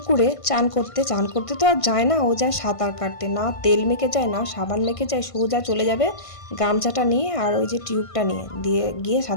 চান করতে, চান করতে তো আর যায় না, ও যায় সাঁতার কাটতে। না তেল মেখে যায়, না সাবান মেখে যায়, সোজা চলে যাবে গামছাটা নিয়ে আর ওই যে টিউবটা নিয়ে দিয়ে গিয়ে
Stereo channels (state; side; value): late; right; 1.5 ms